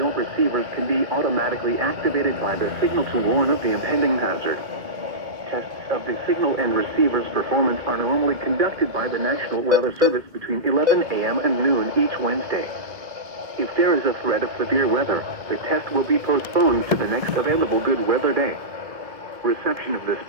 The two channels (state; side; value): late; left; 2.2 ms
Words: receivers can be automatically activated by the signal to warn of the impending hazard. Tests of the signal and receiver's performance are normally conducted by the National Weather Service between 11 a.m. and noon each Wednesday. If there is a threat of severe weather, the test will be postponed to the next available good weather day. Reception of this